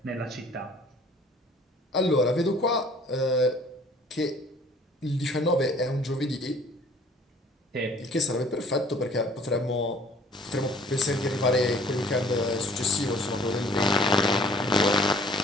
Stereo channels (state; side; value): normal; both; correlation 0.54